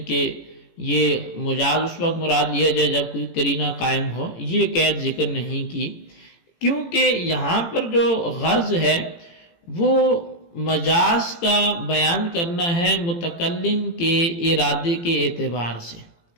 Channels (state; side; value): late; right; 18 ms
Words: کہ یہ مجاز اس وقت مراد لیا جائے جب کوئی قرینہ قائم ہو، یہ قید ذکر نہیں کی، کیونکہ یہاں پر جو غرض ہے وہ مجاز کا بیان کرنا ہے متکلم کے ارادے کے اعتبار سے،